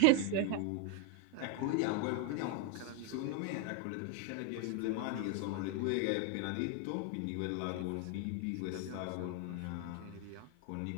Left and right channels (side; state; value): both; different; correlation 0.01